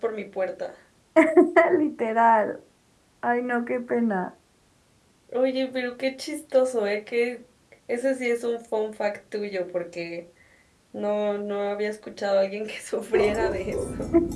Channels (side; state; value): both; identical; correlation 1.00